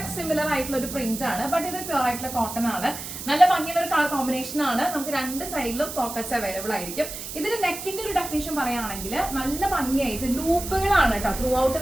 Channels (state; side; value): noise; right; hiss, 9 dB below the sound